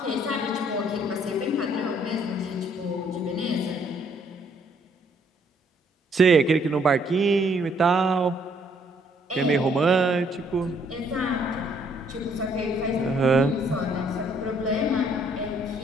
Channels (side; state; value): both; normal; correlation 0.66